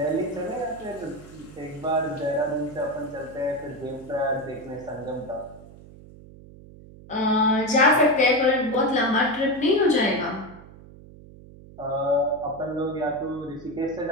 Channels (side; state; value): right; noise; hum, 19 dB below the sound